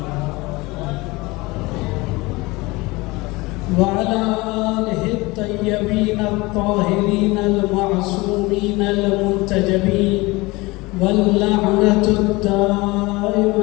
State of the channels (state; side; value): quieter; right; 22.8 dB